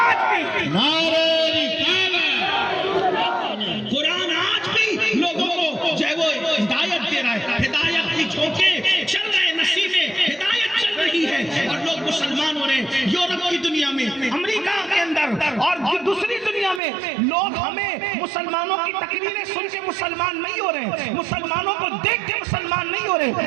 نعرہ قرآن آج بھی لوگوں کو جو ہے وہ ہدایت دے رہا ہے، ہدایت کی جھونکے چل رہے ہیں، نصیبیں ہدایت چل رہی ہے اور لوگ مسلمان ہو رہے ہیں. یورپ کی دنیا میں، امریکہ کے اندر اور دوسری دنیا میں لوگ ہمیں مسلمانوں کی تقریریں سن کے مسلمان نہیں ہو رہے، مسلمانوں کو دیکھ کے مسلمان نہیں ہو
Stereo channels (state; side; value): drops out; left; at 16.8 s